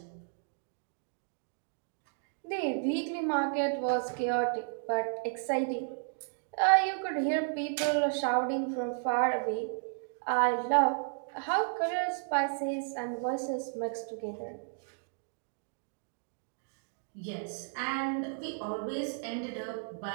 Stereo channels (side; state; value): left; silent; digital silence